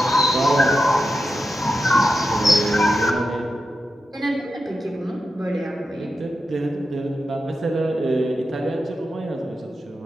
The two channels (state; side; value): normal; both; correlation 0.89